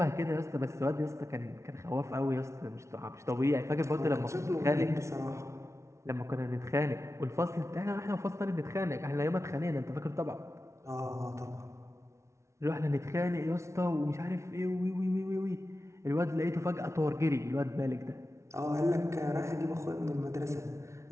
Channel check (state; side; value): late; left; 0.13 ms